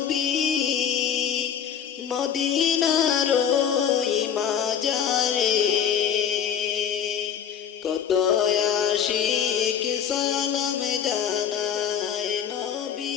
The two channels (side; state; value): right; quieter; 8.2 dB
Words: মদিনার ওই মাজারে। কত আশিক সালাম জানায়